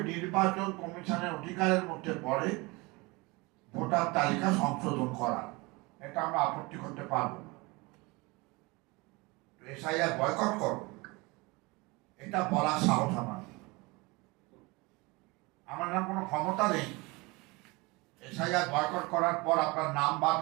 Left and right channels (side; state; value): left; quieter; 25.0 dB